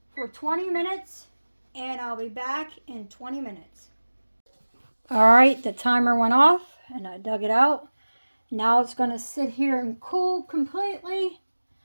for 20 minutes, and I'll be back in 20 minutes. Alright, the timer went off, and I dug it out. Now it's going to sit here and cool completely.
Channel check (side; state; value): both; inverted; correlation -1.00